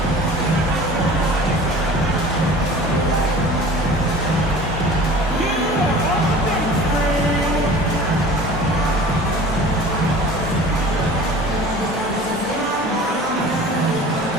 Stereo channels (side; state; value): both; normal; correlation 0.42